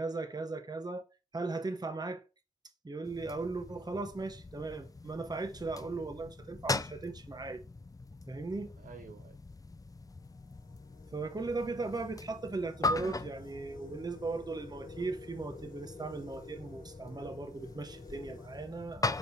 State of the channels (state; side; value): normal; both; correlation 0.63